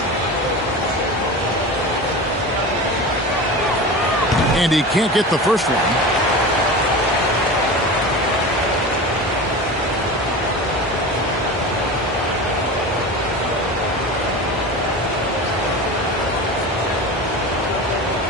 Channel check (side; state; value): both; normal; correlation 0.30